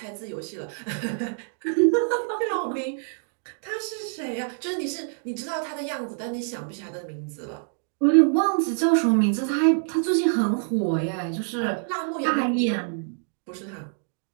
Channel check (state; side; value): silent; left; 61 dB below the other